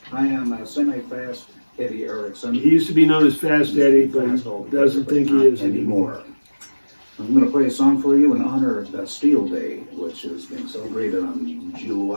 I am a semi-fast Eddie Erickson. He used to be known as Fast Eddie, but he doesn't think he is anymore. I'm going to play a song for you in honor of Bastille Day, which is being celebrated on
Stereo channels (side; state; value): both; inverted; correlation -1.00